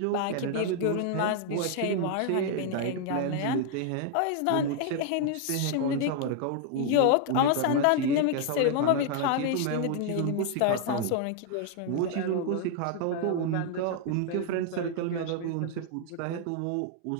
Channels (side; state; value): both; different; correlation 0.00